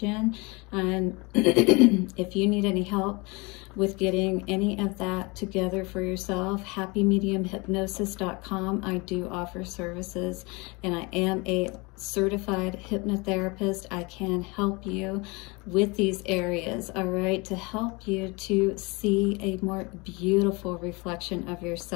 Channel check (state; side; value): quieter; right; 27.0 dB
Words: in. And if you need any help with getting any of that together for yourself, happymediumhypnosis.com. I do offer services, and I am a certified hypnotherapist. I can help you with these areas, all right, to help you to see a more beautiful reflection of